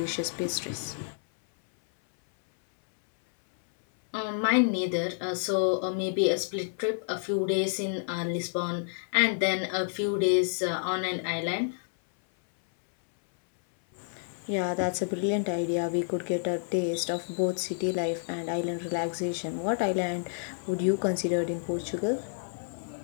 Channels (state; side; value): silent; right; 58 dB below the other